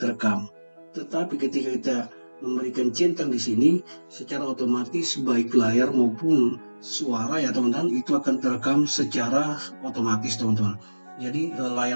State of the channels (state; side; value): inverted; both; correlation -1.00